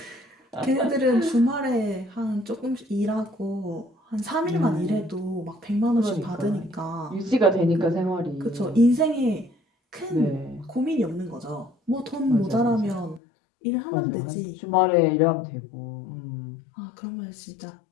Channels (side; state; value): right; drops out; at 13.2 s